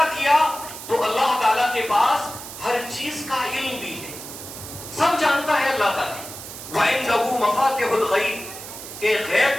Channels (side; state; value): right; noise; hiss, 12 dB below the sound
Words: کیا تو اللہ تعالیٰ کے پاس ہر چیز کا علم بھی ہے. سب جانتا ہے اللہ تعالیٰ. وَعِنْدَهُ مَفَاتِحُ الْغَيْبِ, کہ